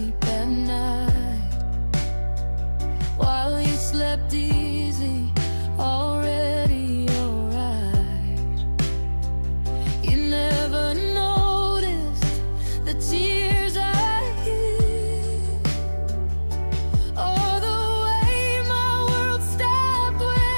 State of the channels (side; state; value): both; inverted; correlation -1.00